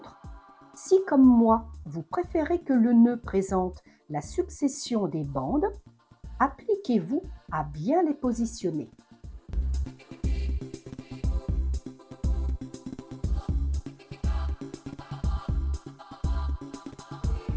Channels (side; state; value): both; identical; correlation 1.00